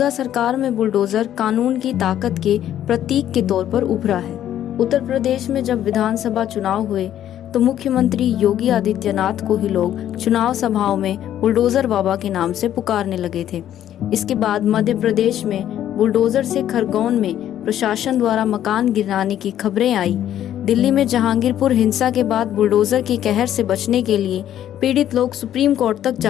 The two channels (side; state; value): right; quieter; 11.3 dB